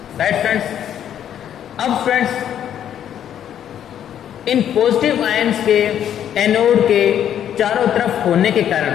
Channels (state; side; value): quieter; right; 10.0 dB